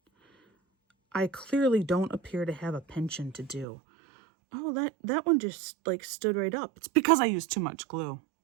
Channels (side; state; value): left; drops out; at 3.7 s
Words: I clearly don't appear to have a penchant to do. Oh, that one just like stood right up. It's because I used too much glue.